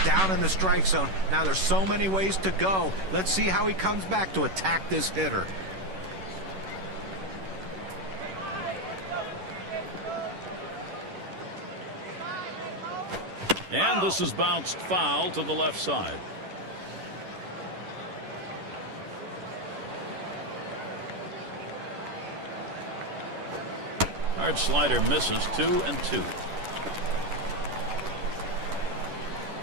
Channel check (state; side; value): late; left; 11 ms